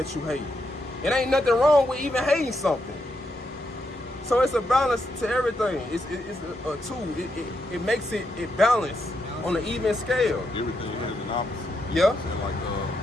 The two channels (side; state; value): both; normal; correlation 0.81